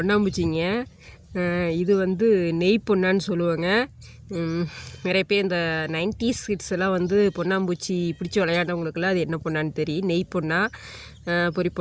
இது வந்து நெய் பொன்னான்னு சொல்லுவாங்க. நிறைய பேர் இந்த 90s கிட்ஸ் எல்லாம் வந்து பொன்னாம்பூச்சி பிடிச்சி விளையாண்டவங்களுக்குலாம் அது என்ன பொண்ணான்னு தெரியும். நெய் பொண்ணா, பொறி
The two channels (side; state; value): both; identical; correlation 1.00